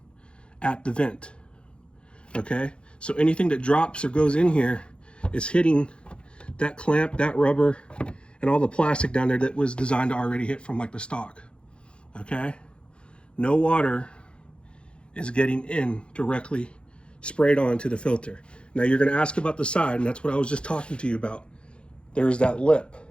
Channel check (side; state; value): right; late; 0.056 ms